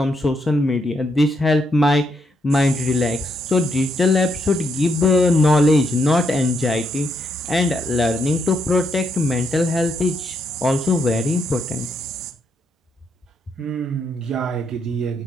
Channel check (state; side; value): normal; both; correlation 0.77